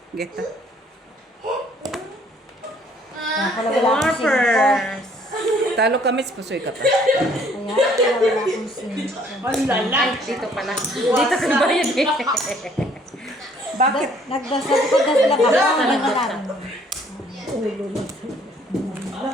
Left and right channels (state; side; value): normal; both; correlation 0.61